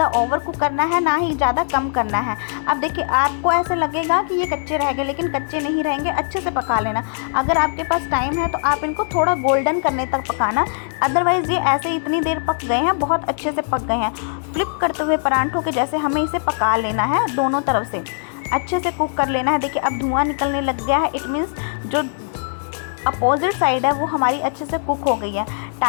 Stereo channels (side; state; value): right; silent; 64 dB below the other